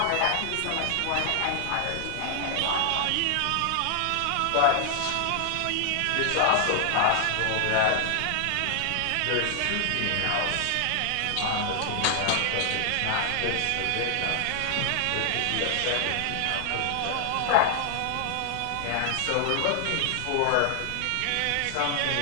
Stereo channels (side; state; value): both; different; correlation 0.00